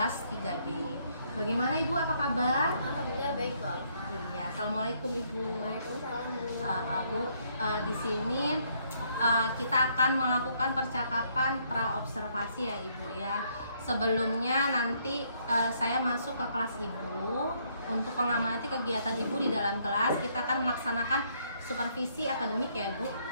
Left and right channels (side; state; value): both; inverted; correlation -0.70